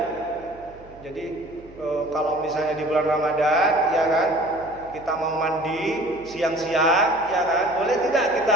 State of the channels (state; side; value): noise; right; hum, 23 dB below the sound